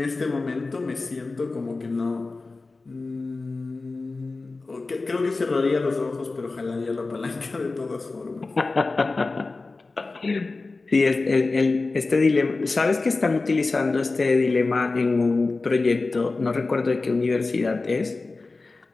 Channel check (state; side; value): quieter; right; 3.6 dB